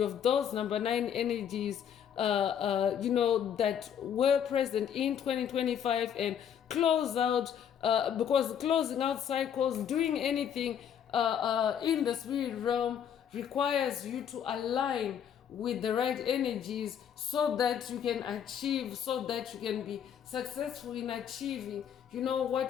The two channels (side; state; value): right; quieter; 8.7 dB